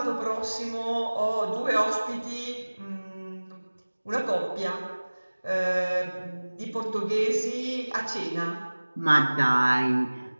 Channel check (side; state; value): both; inverted; correlation -1.00